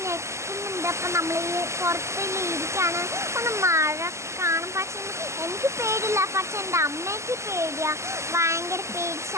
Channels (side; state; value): left; late; 0.13 ms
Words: ഞെക്കുന്നുണ്ട്. അപ്പം നമ്മൾ ഈ പുറത്തിൽ ഇരിക്കുകയാണ്. ഒന്ന് മഴ കാണും. പക്ഷെ എനിക്ക് പേടിയില്ല, പക്ഷെ എൻ്റെ അമ്മയ്ക്ക് പേടിയാണ്, ഭയങ്കര പേടി